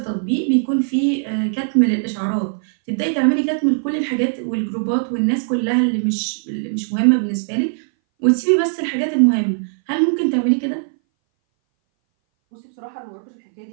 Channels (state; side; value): silent; left; 61 dB below the other